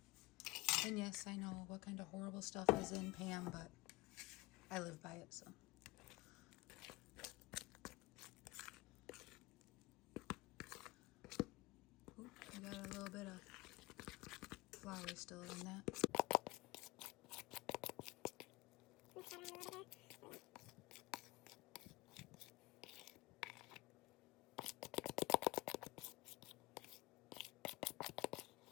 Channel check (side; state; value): right; quieter; 20.9 dB